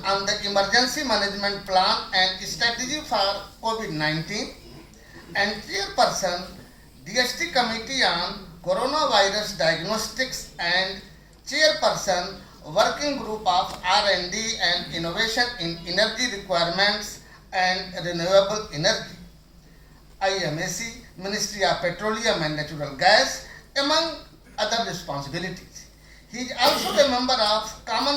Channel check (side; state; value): both; identical; correlation 1.00